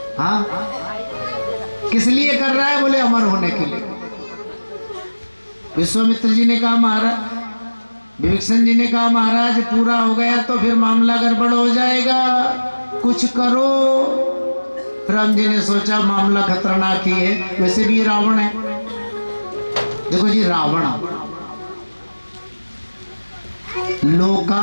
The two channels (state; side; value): inverted; both; correlation -1.00